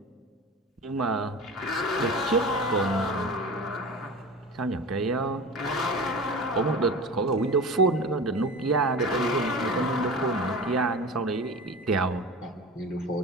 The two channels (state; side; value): normal; both; correlation 0.33